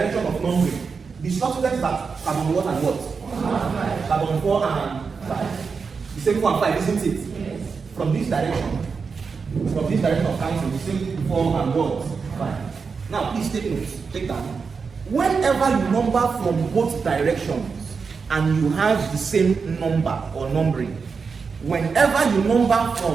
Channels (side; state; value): left; quieter; 5.3 dB